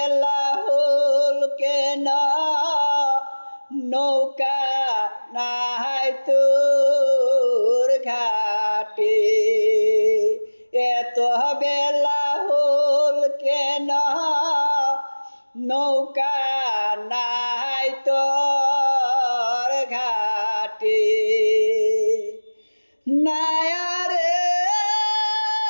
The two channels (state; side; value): inverted; both; correlation -1.00